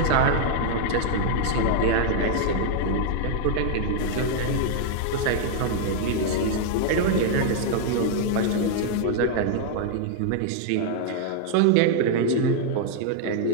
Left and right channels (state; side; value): different; both; correlation -0.01